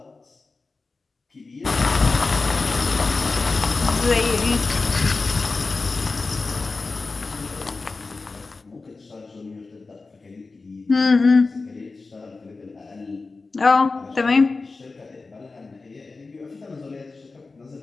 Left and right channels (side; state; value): right; quieter; 3.9 dB